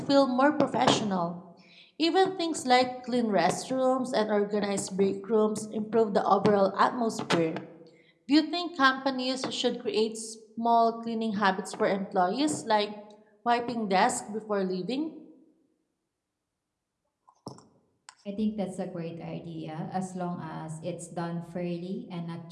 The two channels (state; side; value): identical; both; correlation 1.00